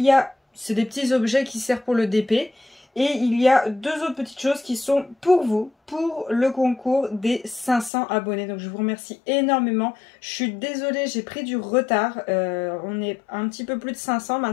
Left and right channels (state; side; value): drops out; right; at 7.9 s